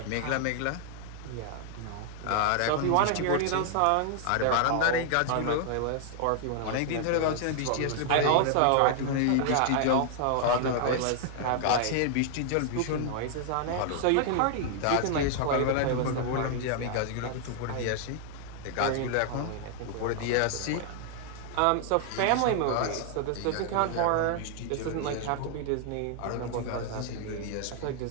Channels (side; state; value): both; different; correlation 0.00